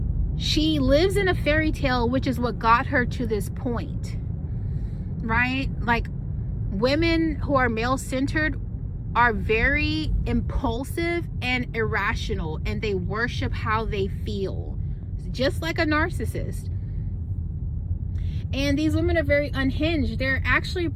she lives in a fairy tale, which is what got her to this point, right? Like, women who are male-centered are very impulsive and irrational, and they worship how they feel, just like a narcissist. And these women are very unhinged. They're actually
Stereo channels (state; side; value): identical; both; correlation 1.00